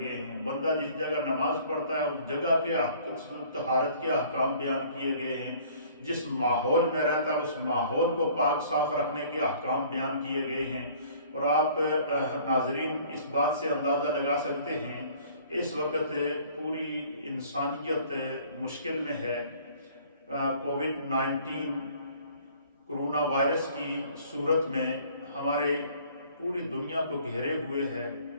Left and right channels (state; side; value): inverted; both; correlation -0.54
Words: ہیں، بندہ جس جگہ نماز پڑھتا ہے اس جگہ کے طہارت کے احکام بیان کیے گئے ہیں، جس ماحول میں رہتا ہے اس ماحول کو پاک صاف رکھنے کے احکام بیان کیے گئے ہیں۔ اور آپ ناظرین اس بات سے اندازہ لگا سکتے ہیں اس وقت پوری انسانیت مشکل میں ہے۔ کووڈ-19 کرونا وائرس کی صورت میں ہمارے پوری دنیا کو گھیرے ہوئے ہے،